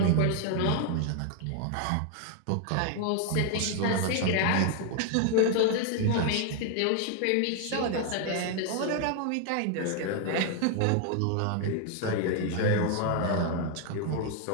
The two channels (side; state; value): both; different; correlation 0.00